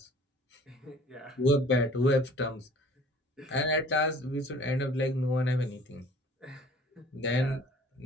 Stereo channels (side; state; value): both; normal; correlation 0.51